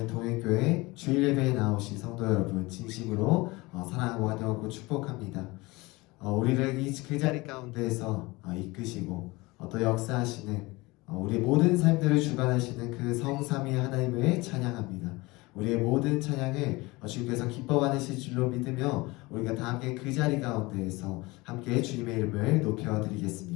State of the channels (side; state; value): right; quieter; 22.7 dB